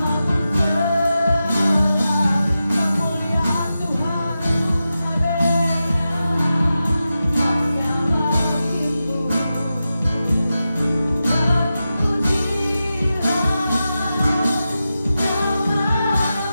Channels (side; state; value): both; inverted; correlation -0.91